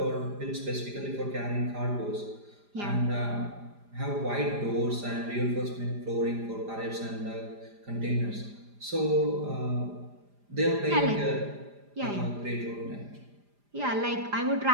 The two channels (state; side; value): late; left; 5.0 ms